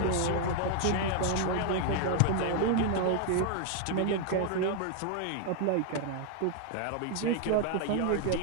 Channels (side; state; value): both; different; correlation 0.00